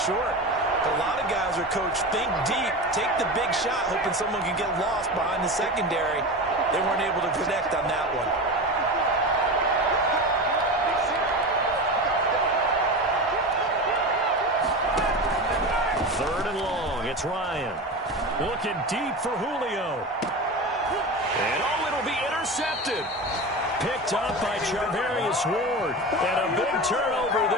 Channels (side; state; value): both; normal; correlation 0.26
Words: short. But a lot of guys are coached, think deep, take the big shot, hoping someone can get lost behind the secondary. They weren't able to connect on that one. Third and long, it's Ryan. Looking deep for Julio. And it'll be intercepted. Picked up by Charvarius Ward. And a big turnover